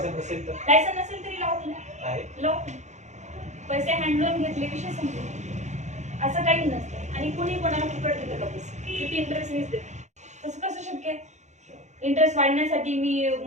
नसेल तर, लायसन्स नसेल तरी लॉफुल आहे. लॉफुल. पैसे हँड लोन घेतले विषय संपला, असं काही नसतं. आणि कुणी कोणाला फुकट देतं का पैसे? किती इंटरेस्ट मीच देते, तसं कसं शक्य आहे? इंटरेस्ट वाढण्यासाठी मी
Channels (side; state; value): left; late; 0.34 ms